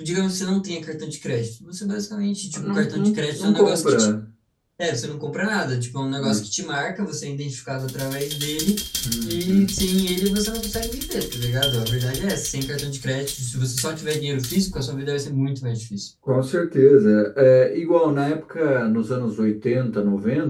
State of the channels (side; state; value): both; identical; correlation 1.00